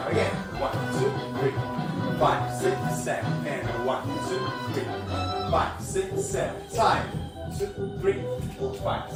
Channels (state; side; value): identical; both; correlation 1.00